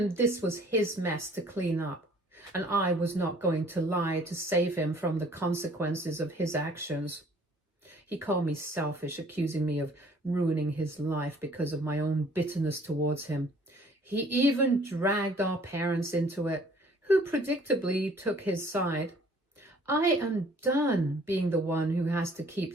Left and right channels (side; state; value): both; normal; correlation 0.56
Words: this was his mess to clean up, and I was not going to lie to save him from the consequences of his actions. He called me selfish, accusing me of ruining his life because of my own bitterness towards him. He even dragged our parents into it, who predictably took his side. I am done being the one who has to